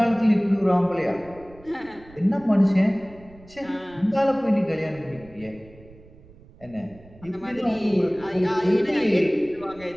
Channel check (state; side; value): noise; right; rumble, 23 dB below the sound